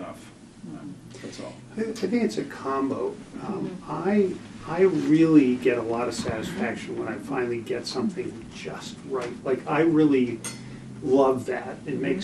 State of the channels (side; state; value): both; identical; correlation 1.00